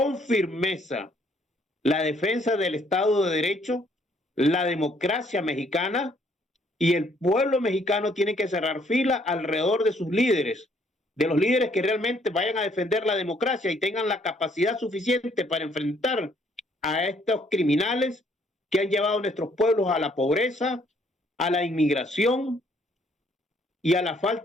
firmeza, la defensa del Estado de Derecho, la democracia mexicana, y el pueblo mexicano tiene que cerrar fila alrededor de sus líderes, de los líderes que realmente vayan a defender la democracia y tengan la capacidad suficiente para enfrentar a estos criminales que han llevado a nuestros pueblos a la pobreza, a la inmigración y a la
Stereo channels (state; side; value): normal; both; correlation 0.65